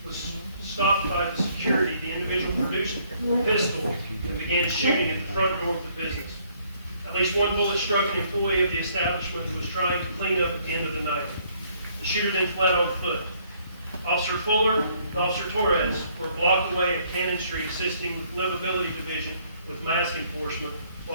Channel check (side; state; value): both; inverted; correlation -0.66